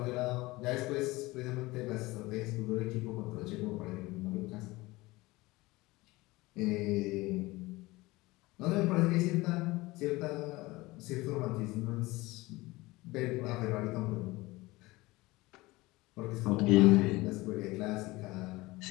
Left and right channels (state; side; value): quieter; right; 20.9 dB